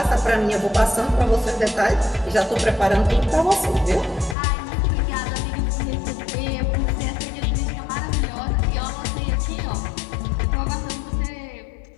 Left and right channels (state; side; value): drops out; right; at 4.4 s